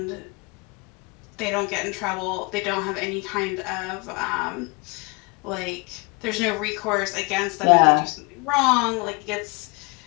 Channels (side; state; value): right; quieter; 28.9 dB